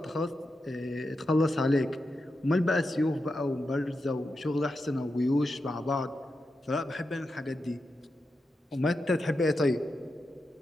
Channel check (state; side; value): normal; both; correlation 0.88